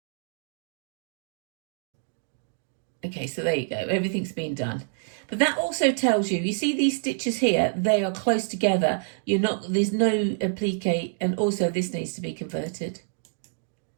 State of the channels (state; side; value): silent; left; digital silence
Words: Okay, so there you go. Everything's been done. But that also tells you see these stitches here, they are close together. There's no applique, and also this needs to be converted.